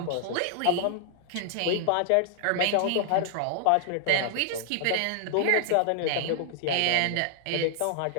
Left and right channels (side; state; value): both; different; correlation 0.00